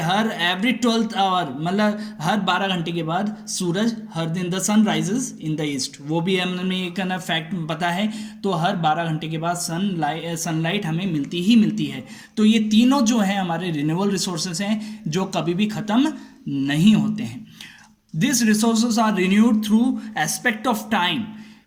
एवरी 12th आवर, मतलब हर 12 घंटे के बाद सूरज, हर दिन the sun rises in the east, वो भी हमें एक ना फैक्ट पता है। तो हर 12 घंटे के बाद सनलाइट हमें मिलती ही मिलती है। तो ये तीनों जो हैं हमारे रिन्यूएबल रिसोर्सेज हैं जो कभी भी ख़त्म नहीं होते हैं। These resources are renewed through aspect of time.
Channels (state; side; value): identical; both; correlation 1.00